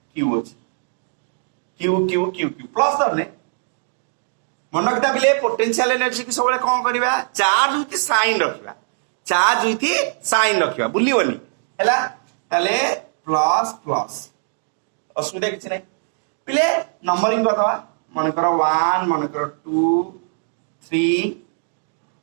q अछि q q q q plus दरने मन रखता बिले पोटेंशियल एनर्जी की सबले कोन करबा चार्ज विथ साइन रखबा चार्ज विथ साइन रखबा बुलिवनी हैला तले प्लस प्लस असुविधा किछ नै पिले नंबरिंग बतावा मन करो 1 मन करो 2 3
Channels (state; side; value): silent; left; digital silence